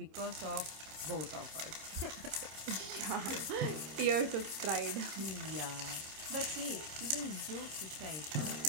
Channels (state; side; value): late; left; 26 ms